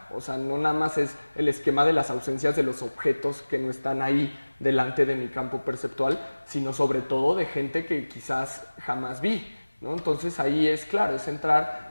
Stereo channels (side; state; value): both; inverted; correlation -1.00